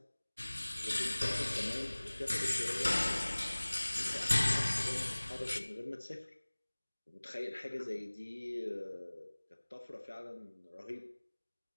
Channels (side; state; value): both; inverted; correlation -1.00